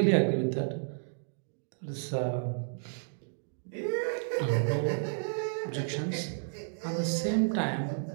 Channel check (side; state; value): left; silent; digital silence